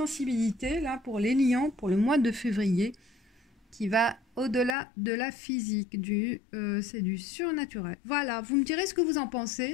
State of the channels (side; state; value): right; drops out; at 4.8 s